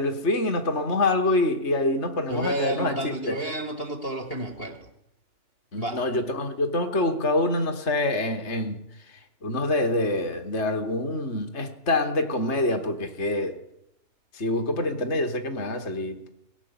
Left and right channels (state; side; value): late; right; 3.2 ms